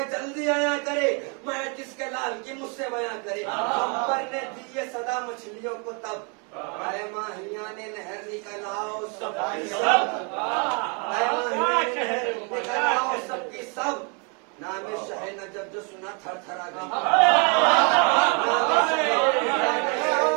جلدی آیا کرے، میں جس کے لال کی مجھ سے بیاں کرے، خمبر نے دی یہ صدا مچھلیوں کو تب، اے ماہیان نہر نکل آؤ سب کی سب، اے ماہیان نہر نکل آؤ سب کی سب، نام شاہ نجف جو سنا تھر تھرا گئی، نام شاہ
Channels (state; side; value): quieter; left; 35.1 dB